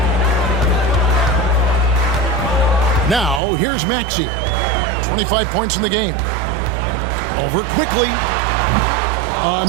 Now, here's Maxey. 25 points in the game. Over quickly.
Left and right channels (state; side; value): drops out; left; at 3.4 s